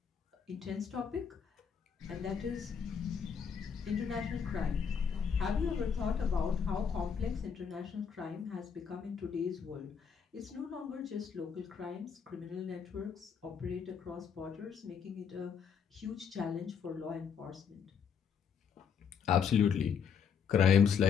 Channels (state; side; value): quieter; right; 6.9 dB